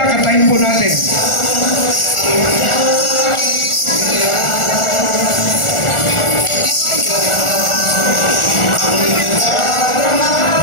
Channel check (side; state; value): right; late; 1.4 ms